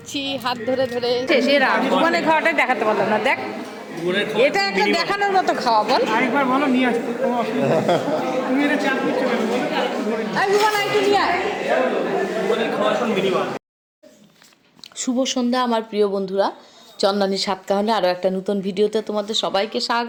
হাত ধরে ধরে। সেরা ভুবনের খাওয়াটাই দেখাতে পারলাম না। দেখ, এটা একটা দেখানোর মতো খাওয়া। বল আরেকবার বলো, নিয়ে আসতে কোনো অসুবিধা নেই। তুমি এটা চাপ দিচ্ছ কেন বলো? শুভ সন্ধ্যা আমার প্রিয় বন্ধুরা, চন্দনী সাতকাহনে আরও একটা নতুন ভিডিওতে তোমাদের সবাইকে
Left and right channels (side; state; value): both; identical; correlation 1.00